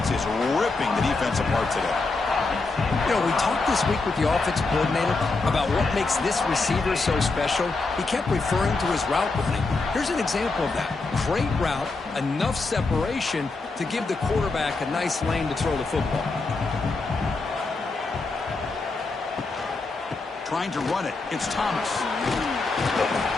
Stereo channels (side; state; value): right; quieter; 3.7 dB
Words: is ripping the defense apart today. You know, we talked this week with the offensive coordinator about what makes this receiver so special. He kept referring to his route running. Here's an example of that. Great route, enough separation to give the quarterback a nice lane to throw the football. Trying to run it. It's Thomas.